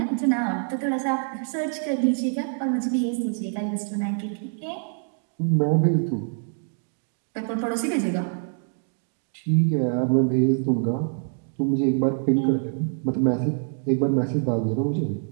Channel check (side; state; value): left; silent; 61 dB below the other